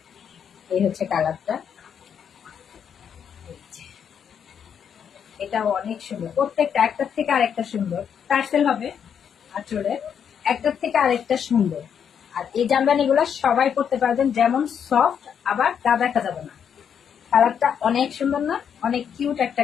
এই হচ্ছে কালারটা, এটা অনেক সুন্দর। প্রত্যেকটা একটার থেকে আরেকটা সুন্দর। টার্সেল হবে আঁচলে, একটার থেকে আরেকটা সুন্দর। আর এই জামদানি গুলা সবাই পড়তে পারবেন, যেমন সফট, আবার গা দেখা যাবে না। কালারটা অনেক সুন্দর না? অনেক কিউট একটা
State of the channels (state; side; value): quieter; right; 7.9 dB